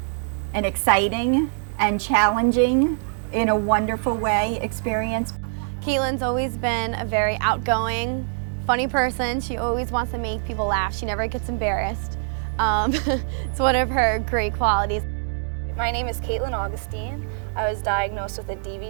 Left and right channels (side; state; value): left; silent; digital silence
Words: an exciting and challenging, in a wonderful way, experience. Caitlin's always been a very outgoing, funny person. She always wants to make people laugh. She never gets embarrassed. It's one of her great qualities. My name is Caitlin Augustine. I was diagnosed with a